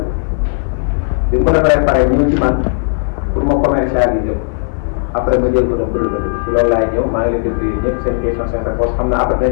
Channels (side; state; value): right; silent; 70 dB below the other